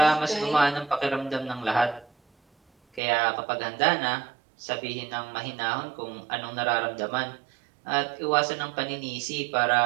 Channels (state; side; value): drops out; left; at 3.0 s